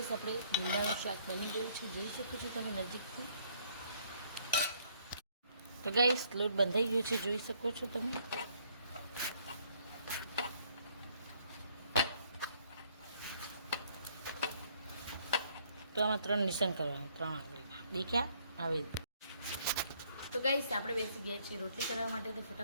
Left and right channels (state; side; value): inverted; both; correlation -0.65